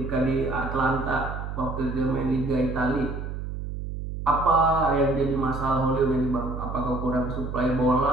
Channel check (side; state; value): right; noise; hum, 6 dB below the sound